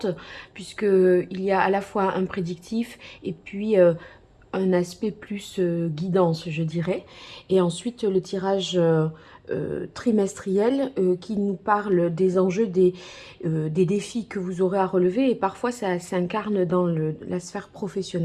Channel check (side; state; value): both; identical; correlation 1.00